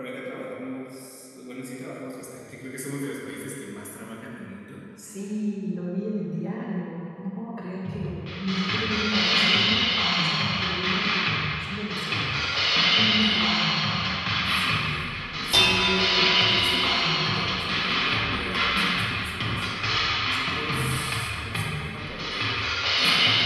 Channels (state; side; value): identical; both; correlation 1.00